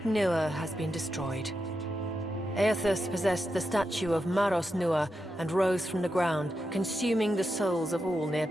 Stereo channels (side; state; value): both; normal; correlation 0.87